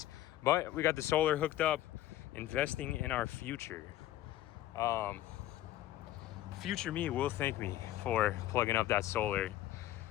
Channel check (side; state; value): right; quieter; 14.1 dB